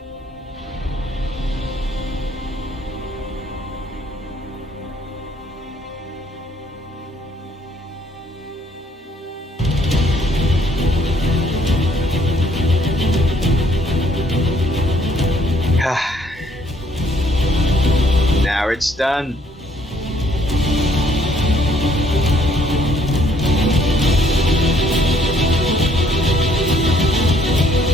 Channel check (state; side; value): normal; both; correlation 0.64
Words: Now it's done.